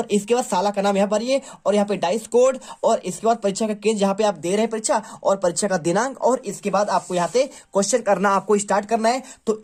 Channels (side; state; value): both; identical; correlation 1.00